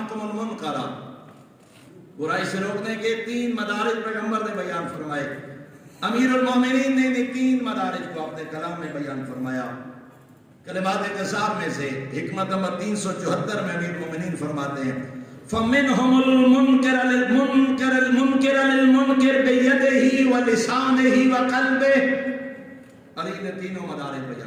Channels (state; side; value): identical; both; correlation 1.00